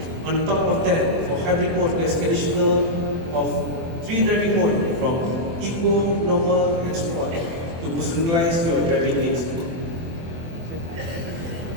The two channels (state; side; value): late; left; 24 ms